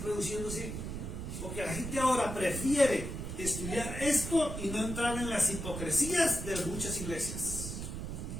reduciéndose. Porque la gente ahora prefiere estudiar esto y no entrar en las hipocresías de muchas iglesias.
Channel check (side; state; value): right; noise; rumble, 6 dB below the sound